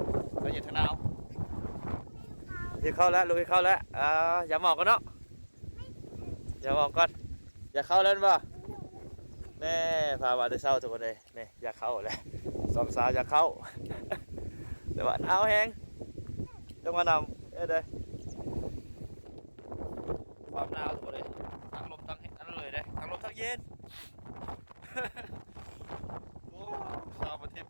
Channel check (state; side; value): inverted; both; correlation -1.00